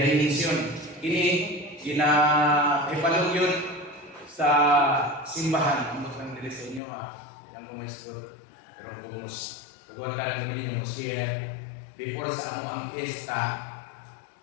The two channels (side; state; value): right; drops out; at 6.8 s